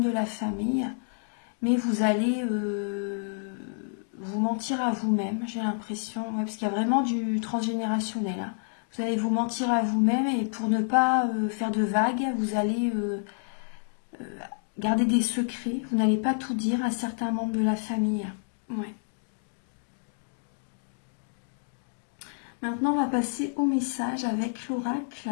de la famille. Mais vous allez vous mentir à vous-même, j'ai l'impression. Ouais, parce qu'il y a vraiment du transgénérationnel. Hein. Vous allez vous mentir à vous-même et pour ne pas faire de vagues, vous allez garder des secrets. Vous n'allez pas tout dire à certains membres de la famille. Ouais. Maintenant, on va passer au message avec l'oracle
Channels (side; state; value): right; silent; digital silence